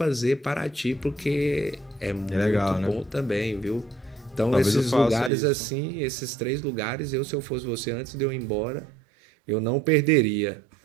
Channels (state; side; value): drops out; left; at 5.3 s